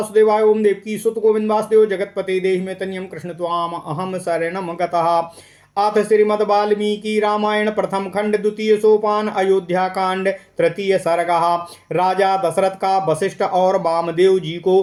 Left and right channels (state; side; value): identical; both; correlation 1.00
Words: ओम देवकी सुत गोविंद वासुदेव जगतपते देहि में तन्यम कृष्ण त्वाम अहम शरणम गतः। अथ श्रीमद् वाल्मीकि रामायण प्रथम खंड द्वितीय सोपान अयोध्या कांड तृतीय सर्ग। राजा दशरथ का वशिष्ठ और वामदेव जी